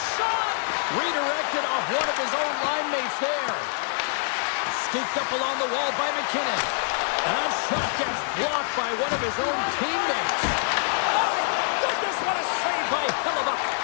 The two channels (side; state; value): right; silent; 61 dB below the other